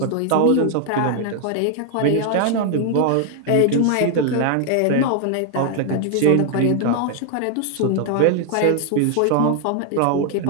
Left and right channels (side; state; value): both; different; correlation 0.00